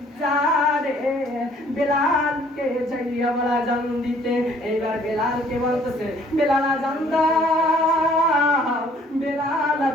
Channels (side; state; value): both; normal; correlation 0.59